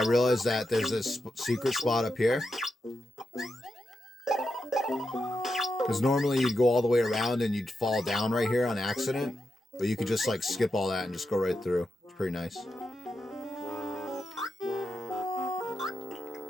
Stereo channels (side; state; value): both; normal; correlation 0.87